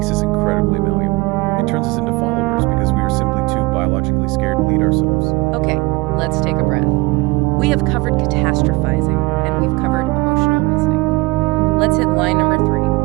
us incredibly malleable. It turns us into followers because we are simply too biologically scared to lead ourselves. Okay, let's take a breath. We have covered catastrophizing and we've covered emotional reasoning. Let's hit line number 3,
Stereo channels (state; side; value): quieter; left; 23.6 dB